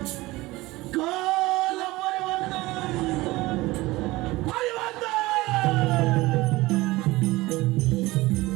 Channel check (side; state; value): left; quieter; 20.0 dB